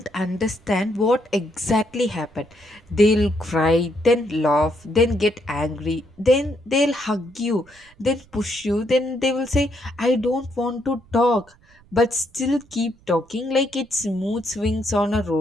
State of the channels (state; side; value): noise; right; rumble, 28 dB below the sound